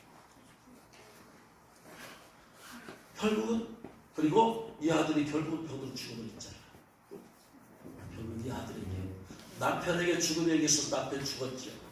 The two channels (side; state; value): both; identical; correlation 1.00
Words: 결국은, 그리고 이 아들이 결국은 병으로 죽음을 했잖아. 결국은 이 아들에게, 남편에게 죽음에 의해서 남편 죽었죠.